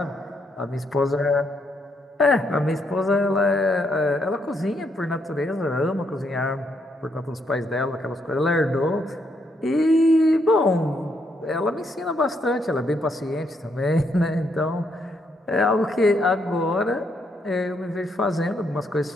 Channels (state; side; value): normal; both; correlation 0.76